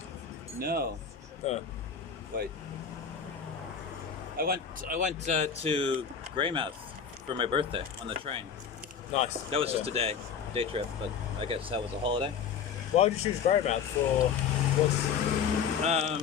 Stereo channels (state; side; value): quieter; right; 7.0 dB